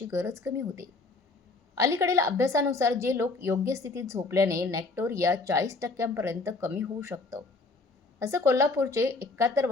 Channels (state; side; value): quieter; right; 3.6 dB